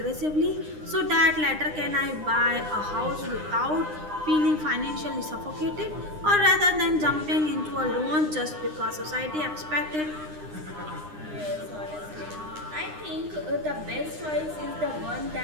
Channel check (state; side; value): late; left; 9.8 ms